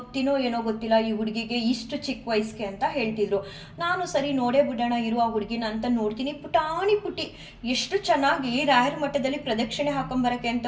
ಏನೋ ಗೊತ್ತಿಲ್ಲ ಈ ಹುಡುಗಿಗೆ ಇಷ್ಟು ಚಿಕ್ಕ ವಯಸ್ಸಿಗೆ ಅಂತ ಹೇಳ್ತಿದ್ರು. ನಾನು ಸರಿ ನೋಡೇ ಬಿಡೋಣ ಇರು ಆ ಹುಡುಗಿನ ಅಂತ ನೋಡ್ತೀನಿ. ಪುಟ್ಟಿ ಎಷ್ಟು ಚೆನ್ನಾಗಿ ರಾಯರ ಮಠದಲ್ಲಿ ಪ್ರದಕ್ಷಿಣೆ ಹಾಕೊಂಬರಕ್ಕೆ ಅಂತ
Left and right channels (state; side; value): identical; both; correlation 1.00